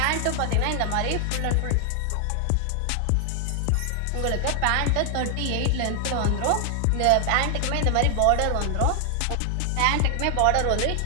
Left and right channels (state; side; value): different; both; correlation 0.00